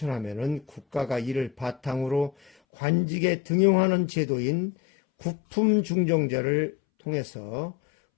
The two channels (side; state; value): right; drops out; at 2.5 s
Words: 국가가 이를 바탕으로 관직에 등용하는 제도인 구품중정제를 통해서